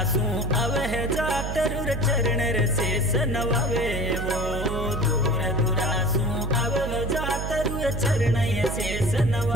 जातरुर चरण शेष नवावे वो दूर दुरासू अव जातरुर चरण शेष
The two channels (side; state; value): right; noise; hum, 4 dB below the sound